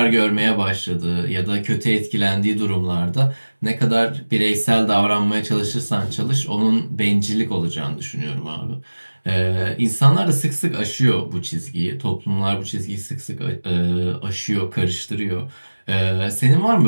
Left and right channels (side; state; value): both; inverted; correlation -1.00